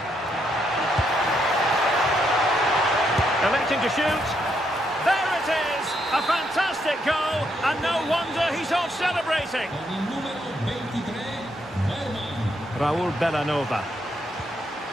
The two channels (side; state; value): both; normal; correlation 0.77